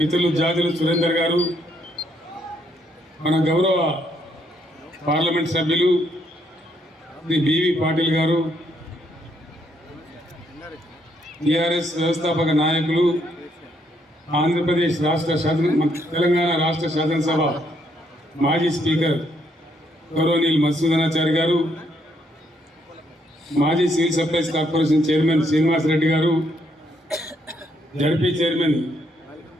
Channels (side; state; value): both; normal; correlation 0.73